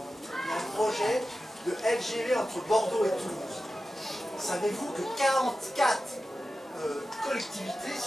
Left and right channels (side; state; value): both; normal; correlation 0.93